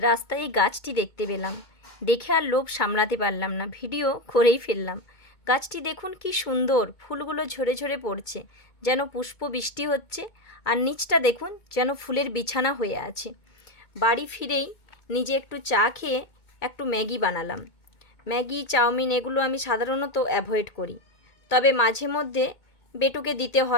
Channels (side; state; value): right; late; 2.2 ms